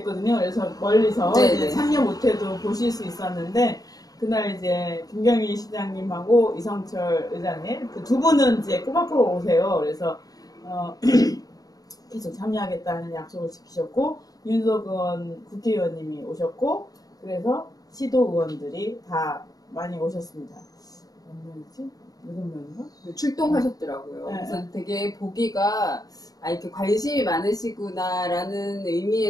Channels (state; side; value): late; right; 0.18 ms